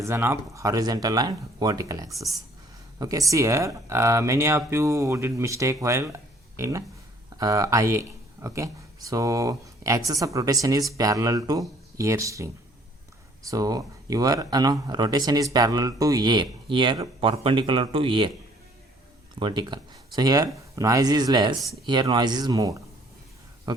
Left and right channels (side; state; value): both; normal; correlation 0.59